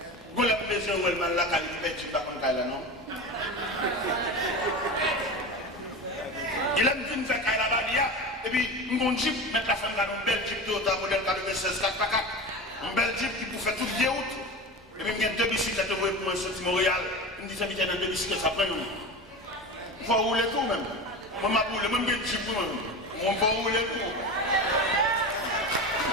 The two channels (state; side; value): normal; both; correlation 0.27